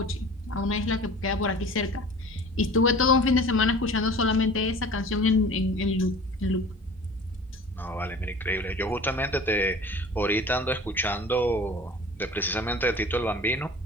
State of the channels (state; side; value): normal; both; correlation 0.42